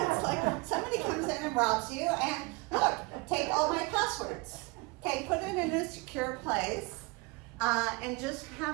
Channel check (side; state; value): left; quieter; 26.4 dB